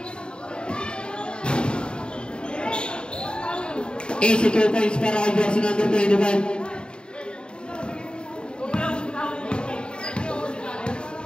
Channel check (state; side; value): late; right; 0.051 ms